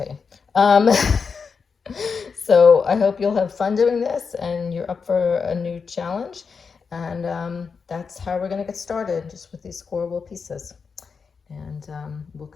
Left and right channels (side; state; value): right; quieter; 5.5 dB